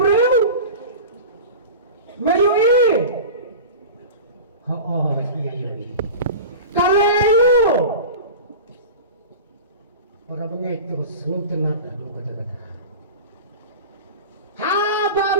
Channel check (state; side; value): inverted; both; correlation -0.32